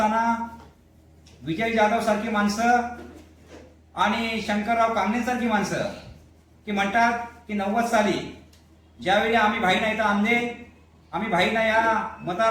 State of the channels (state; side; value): identical; both; correlation 1.00